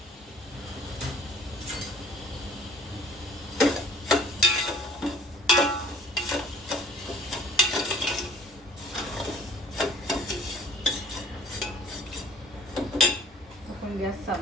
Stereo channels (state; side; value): normal; both; correlation 0.54